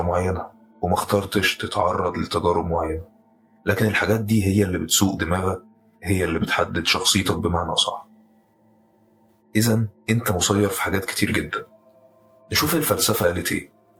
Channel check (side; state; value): both; identical; correlation 1.00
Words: معينة، وما اخترتش تتعرض لتجارب معينة، لكن الحاجات دي هي اللي بتسوق دماغك، هي اللي بتحدد شخصيتك بمعنى صح. إذن انت مسير في حاجات كتير جدا. نشوف الفلسفة قالت ايه.